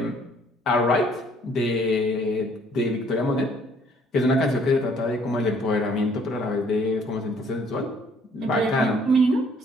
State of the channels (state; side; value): normal; both; correlation 0.61